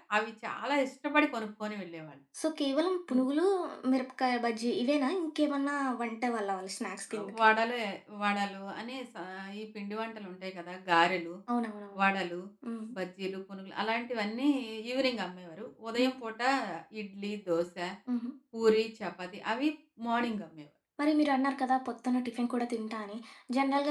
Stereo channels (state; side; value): identical; both; correlation 1.00